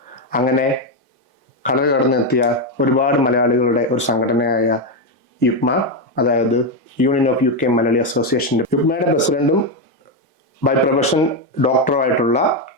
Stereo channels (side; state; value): both; normal; correlation 0.06